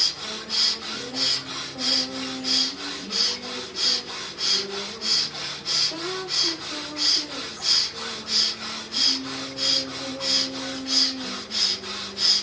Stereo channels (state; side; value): identical; both; correlation 1.00